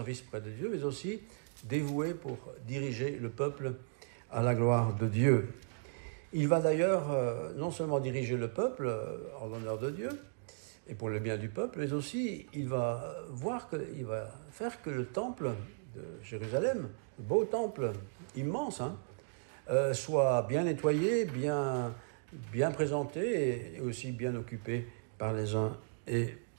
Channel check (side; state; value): left; silent; digital silence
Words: près de Dieu, mais aussi dévoué pour diriger le peuple à la gloire de Dieu. Il va d'ailleurs non seulement diriger le peuple en l'honneur de Dieu et pour le bien du peuple, mais aussi il va faire que le temple de Jérusalem, le beau temple immense, soit bien nettoyé, bien présenté et aussi bien occupé par les uns et